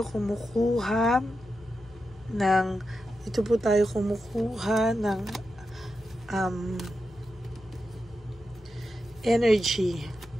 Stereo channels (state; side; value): normal; both; correlation 0.89